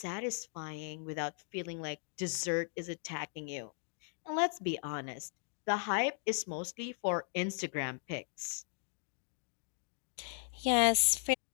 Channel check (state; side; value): silent; right; 53 dB below the other